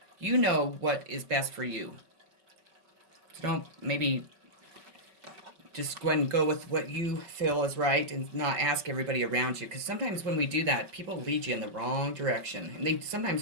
You know what is best for you. So don't maybe just go ahead and go with what you feel is right and not ask everybody around you. Because sometimes when we do that, people lead you in the wrong direction. And sometimes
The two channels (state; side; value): late; left; 5.3 ms